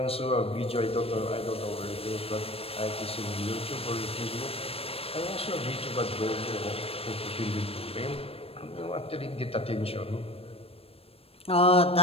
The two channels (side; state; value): right; late; 0.28 ms